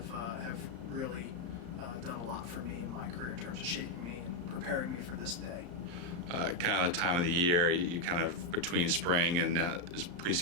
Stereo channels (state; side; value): late; left; 34 ms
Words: really done a lot for me in my career in terms of shaping me and preparing me for this day. Kind of the time of the year, you kind of between spring and